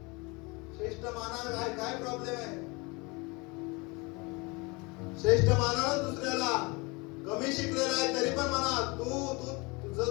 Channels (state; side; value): quieter; right; 27.0 dB